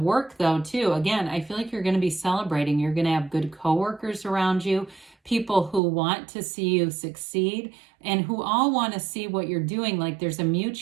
work, though, too, again, I feel like you're going to be celebrating. You're going to have good coworkers around you, people who want to see you succeed, and who all want to see what you're doing. Like, there's a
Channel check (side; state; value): left; drops out; at 5.8 s